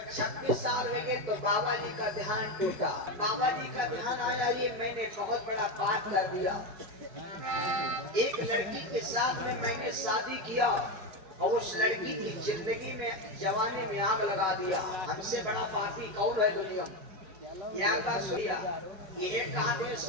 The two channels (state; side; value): late; left; 4.8 ms